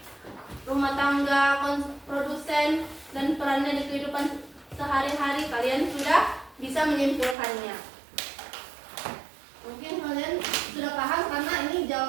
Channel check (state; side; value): drops out; left; at 7.4 s